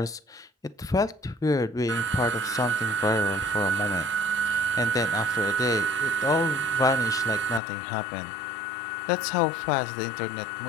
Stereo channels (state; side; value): drops out; right; at 7.6 s